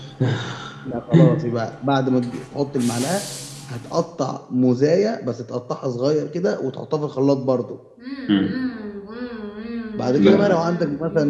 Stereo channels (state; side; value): identical; both; correlation 1.00